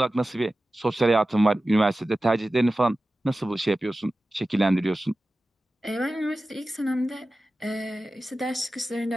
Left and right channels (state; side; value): normal; both; correlation 0.95